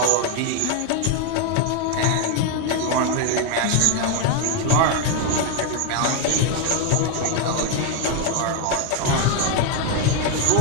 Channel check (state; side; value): different; both; correlation 0.01